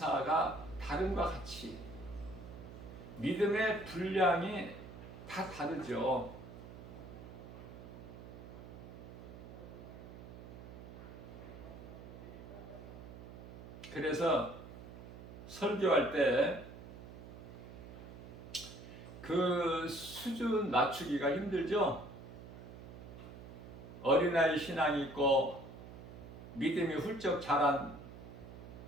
다름과 같이 믿음의 분량이 다 다르죠. 그래서 설교할 때 그 수준 낮추기가 힘들죠. 어린아이 신앙이 있고 믿음이 훌쩍 자란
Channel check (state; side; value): noise; right; hum, 13 dB below the sound